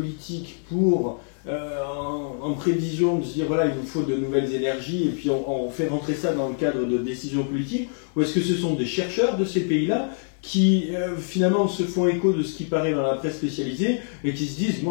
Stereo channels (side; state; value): right; silent; 62 dB below the other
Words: pour, en prévision, de se dire, voilà, il nous faut de nouvelles énergies, et puis on fait rentrer ça dans le cadre de décisions politiques? Ou est-ce que ce sont des chercheurs de ces pays-là qui finalement se font écho de ce qui paraît dans la presse spécialisée et qui se disent,